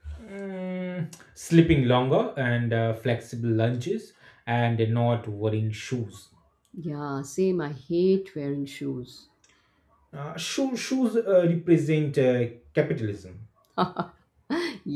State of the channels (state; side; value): identical; both; correlation 1.00